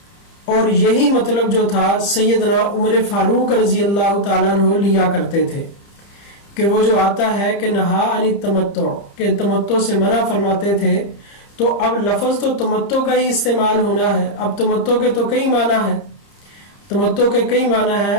اور یہی مطلب جو تھا سیدنا عمر فاروق رضی اللہ تعالیٰ عنہ لیا کرتے تھے کہ وہ جو آتا ہے کہ نہا عن التمتع، کہ تمتع سے منع فرماتے تھے. تو اب لفظ تو تمتع کا ہی استعمال ہونا ہے. اب تمتع کے تو کئی معنی ہیں، تمتع کے کئی معنی ہیں.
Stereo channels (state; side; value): late; right; 30 ms